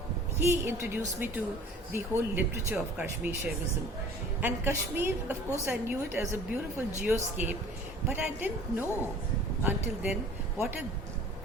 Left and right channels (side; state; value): both; normal; correlation 0.47